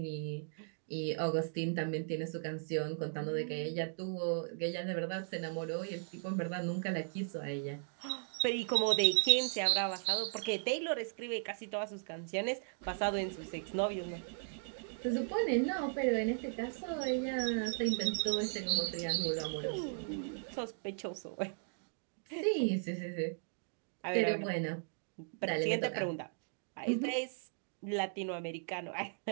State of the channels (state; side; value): silent; left; digital silence